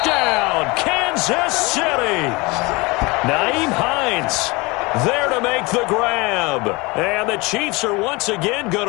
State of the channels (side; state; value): right; quieter; 25.1 dB